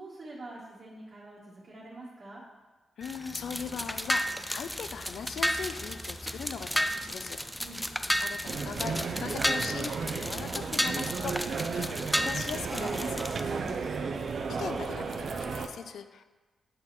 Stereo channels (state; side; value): normal; both; correlation 0.89